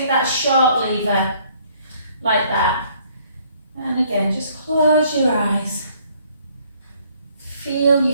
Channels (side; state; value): both; inverted; correlation -0.63